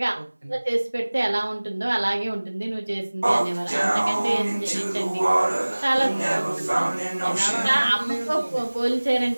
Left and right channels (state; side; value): inverted; both; correlation -1.00